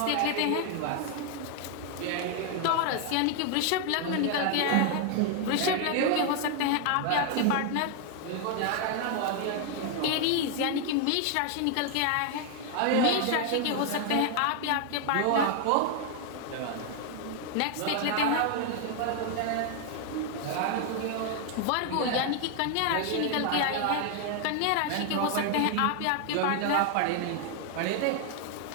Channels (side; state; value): both; different; correlation 0.00